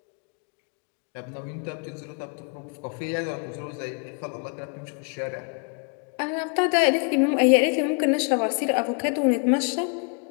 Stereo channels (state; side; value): quieter; right; 39.2 dB